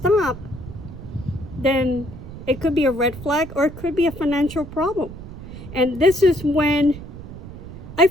then it could be a red flag, or it could be a financial problem. And this is when I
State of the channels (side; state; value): right; noise; rumble, 13 dB below the sound